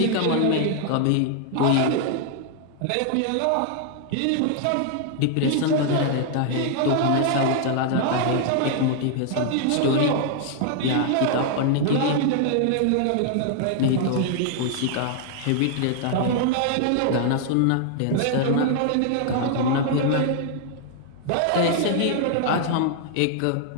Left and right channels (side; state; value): both; different; correlation 0.00